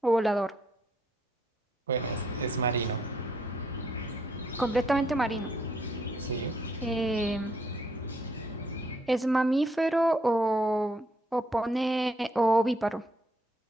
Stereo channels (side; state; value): both; normal; correlation 0.71